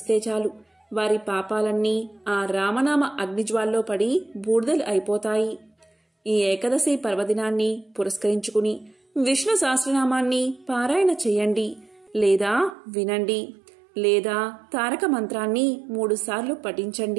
చాలు. వారి పాపాలన్నీ ఆ రామనామ అగ్నిజ్వాల్లో పడి బూడిదలు అయిపోతాయి. ఈ ఏకాదశి పర్వదినాన్ని పురస్కరించుకుని విష్ణు సహస్రనామాన్ని పారాయణ చేయండి, లేదా వినండి, లేదా తారక మంత్రాన్ని 3 సార్లు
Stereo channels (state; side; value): drops out; left; at 12.8 s